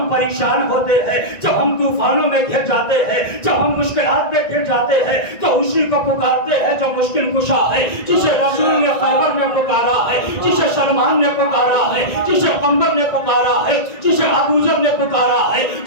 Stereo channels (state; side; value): late; right; 1.9 ms